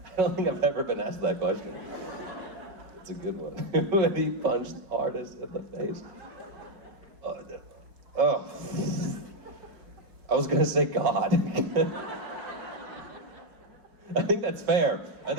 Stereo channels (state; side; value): late; left; 4.7 ms